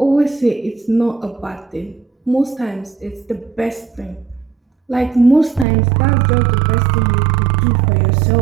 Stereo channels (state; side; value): drops out; left; at 5.7 s